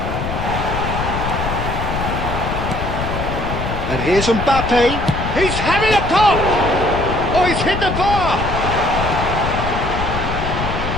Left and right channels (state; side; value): noise; left; rumble, 4 dB below the sound